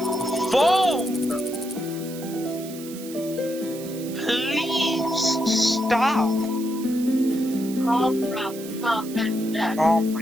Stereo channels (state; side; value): noise; right; hiss, 15 dB below the sound